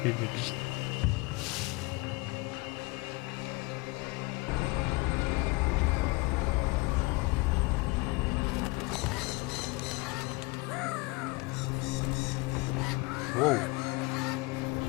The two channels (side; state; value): right; quieter; 25.2 dB